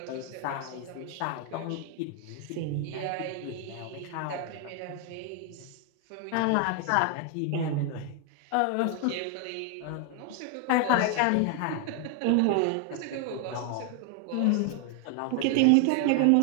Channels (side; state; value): both; different; correlation 0.00